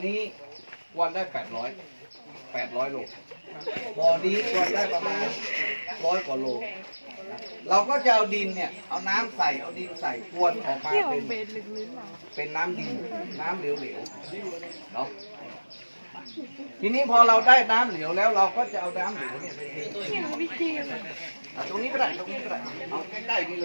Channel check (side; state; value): both; inverted; correlation -1.00